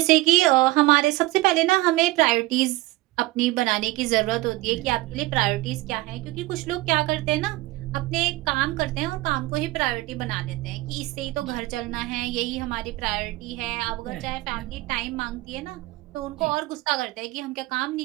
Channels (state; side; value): quieter; left; 19.5 dB